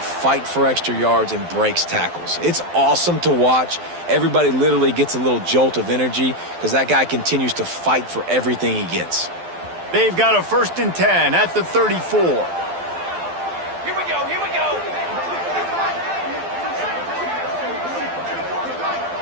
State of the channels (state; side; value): late; left; 12 ms